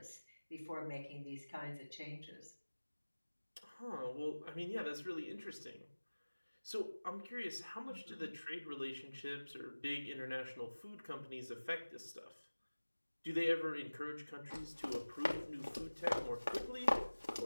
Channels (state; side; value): inverted; both; correlation -1.00